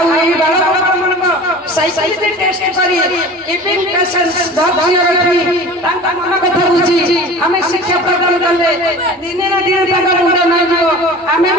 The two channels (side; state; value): both; normal; correlation 0.39